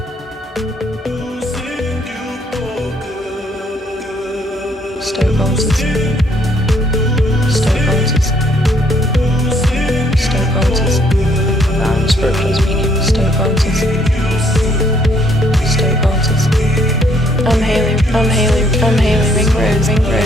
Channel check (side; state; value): both; normal; correlation 0.67